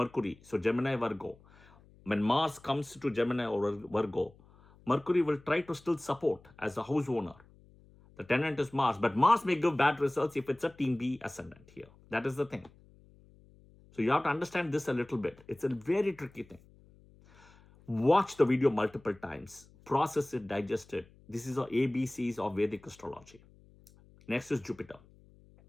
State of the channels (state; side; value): noise; left; hum, 26 dB below the sound